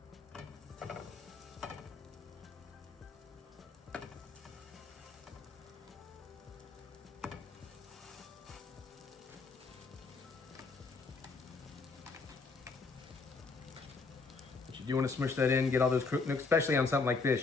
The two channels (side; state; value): right; quieter; 4.3 dB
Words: you do want to smush that in, get all those cooked, especially on something like